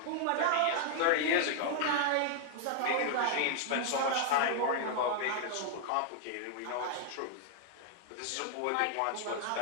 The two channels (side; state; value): both; different; correlation -0.01